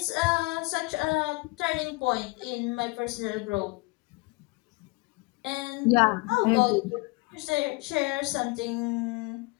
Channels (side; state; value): right; quieter; 26.1 dB